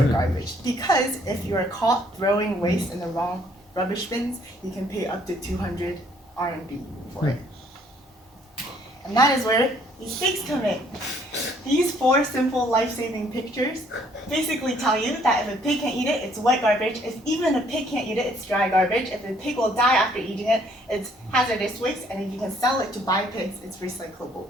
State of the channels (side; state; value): both; normal; correlation 0.63